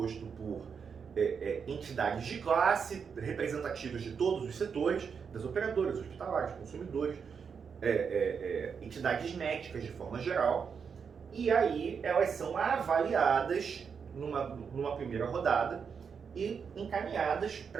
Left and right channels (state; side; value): quieter; left; 6.3 dB